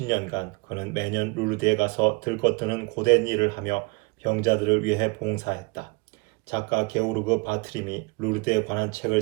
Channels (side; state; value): left; quieter; 29.0 dB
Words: 그는 매년 루르드에 가서 들것드는 고된 일을 하며 병자들을 위해 봉사했다. 작가 게오르그 바트림이 루르드에 관한 책을